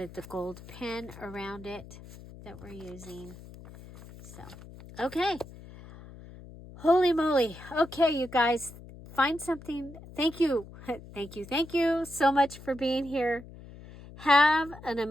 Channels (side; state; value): left; noise; hum, 17 dB below the sound